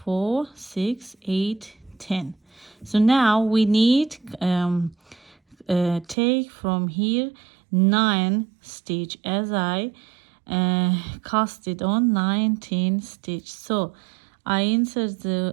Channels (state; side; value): drops out; left; at 6.2 s